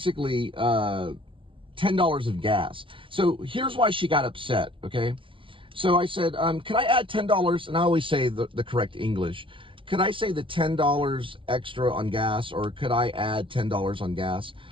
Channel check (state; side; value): late; left; 0.25 ms